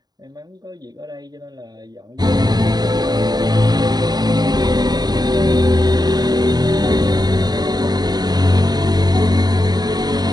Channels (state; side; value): late; left; 0.20 ms